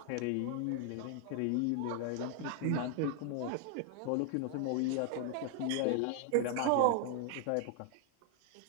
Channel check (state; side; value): different; both; correlation 0.00